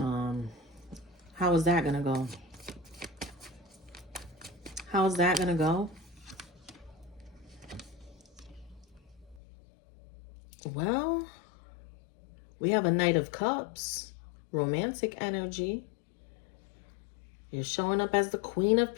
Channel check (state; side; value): drops out; right; at 9.4 s